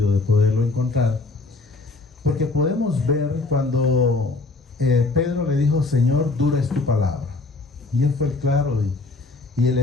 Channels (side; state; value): right; quieter; 3.4 dB